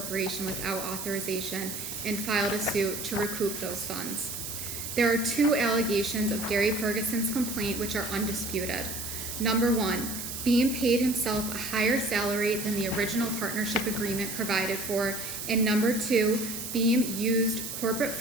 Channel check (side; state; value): right; noise; hiss, 6 dB below the sound